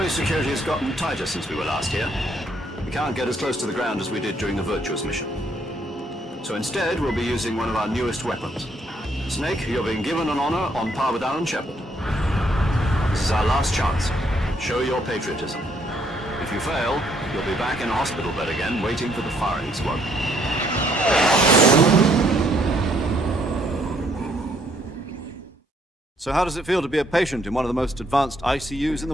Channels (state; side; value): normal; both; correlation 0.69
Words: security has gotten tighter since we were last here. We can't get as close to the ground as we did during the Virtuous mission. So instead, we'll be using one of our newest weapons. Snake, you're being given an honor on par with Alan Shepard. This is our last chance. Show your patriotism. If you fail, you'll be back in a hospital bed again, waiting for the firing squad. So how does it feel to be a patient in one of the most advanced ICUs in